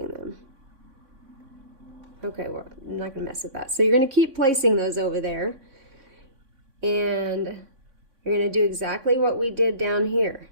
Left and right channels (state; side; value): late; left; 3.6 ms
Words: them. Okay, well, I'm not going to mess with that. So you're going to keep placing those over there. And you're going to do exactly what we did down here.